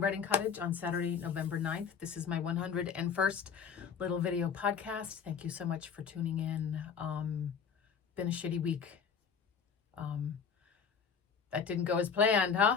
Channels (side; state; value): right; quieter; 6.4 dB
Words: Cottage on Saturday, November 9th. This is my 101st little video podcast. Thank you so much for tuning in. Been a shitty week. That didn't go as planned, huh?